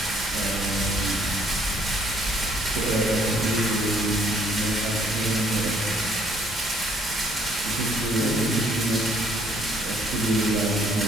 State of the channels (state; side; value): normal; both; correlation 0.65